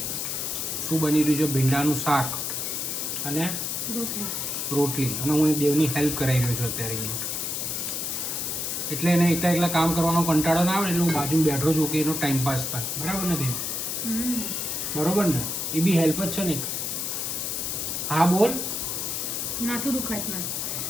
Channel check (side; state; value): left; noise; hiss, 2 dB below the sound